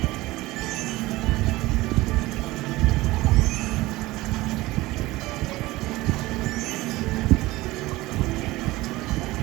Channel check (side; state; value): left; quieter; 19.3 dB